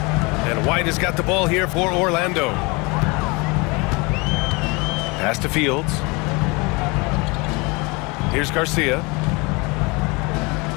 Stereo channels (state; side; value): quieter; right; 27.0 dB